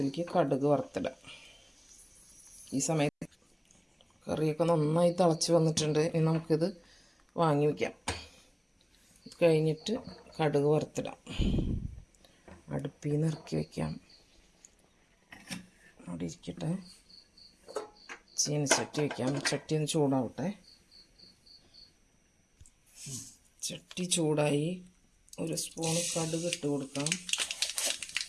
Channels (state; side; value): identical; both; correlation 1.00